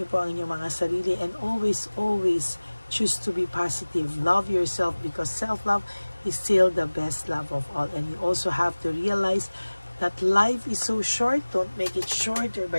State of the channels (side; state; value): both; inverted; correlation -1.00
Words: niyo po ang inyong mga sarili. And always choose to be positive. Love yourself because self-love is still the best love of all. And you also have to realize that life is so short. Don't make it shorter